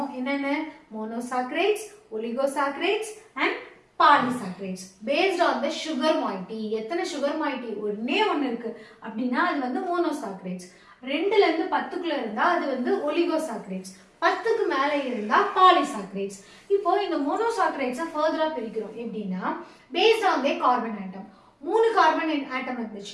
என்னென்ன? monosaccharides, oligosaccharides and polysaccharides based on the sugar moiety. எத்தனை sugar moiety ஒண்ணே ஒன்னு இருக்கு அப்படினா அது வந்து monosaccharides. 2ல இருந்து 10க்குள்ள இருந்தா அது வந்து oligosaccharides. 10க்கு மேல இருந்தா polysaccharides. இப்போ இந்த monosaccharides ஃபர்தரா பிரிக்கிறோம். எப்படின்னா based on the carbon atom. 3 carbon atom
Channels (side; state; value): both; identical; correlation 1.00